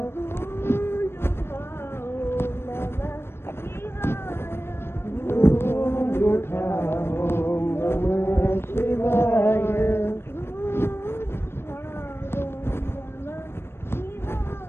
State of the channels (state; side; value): late; right; 0.12 ms